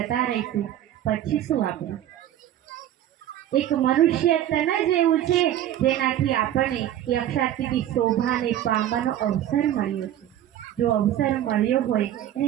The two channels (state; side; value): quieter; left; 11.9 dB